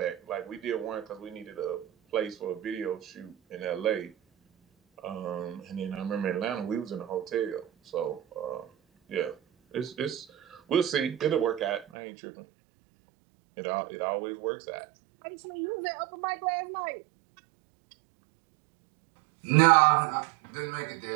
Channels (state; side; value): drops out; left; at 11.9 s